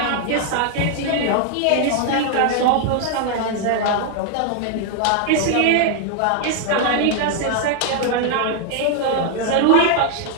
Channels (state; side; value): different; both; correlation 0.00